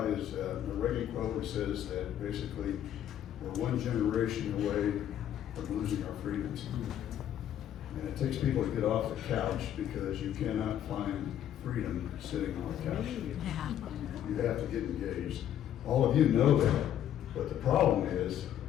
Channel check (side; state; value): right; quieter; 10.6 dB